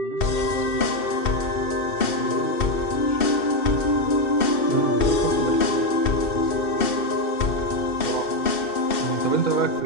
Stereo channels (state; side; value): late; right; 2.7 ms